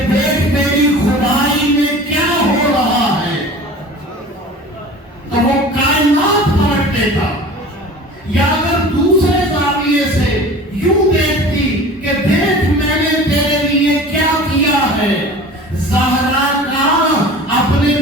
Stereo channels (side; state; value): both; normal; correlation 0.40